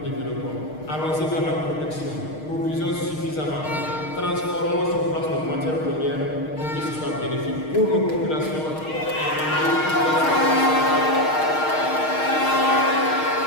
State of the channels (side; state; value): right; late; 6.5 ms